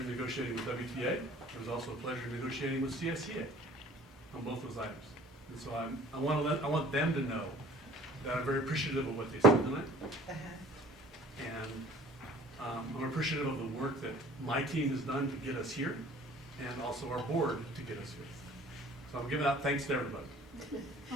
with WTA. It was also a pleasure negotiating with CSEA on both those items. And so I want them to know that I'm very appreciative of what they said tonight. And I'm appreciative of the work that my team has done to get us here, and also our board to get us here. So I'm giving out thanks to everybody.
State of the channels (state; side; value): normal; both; correlation 0.49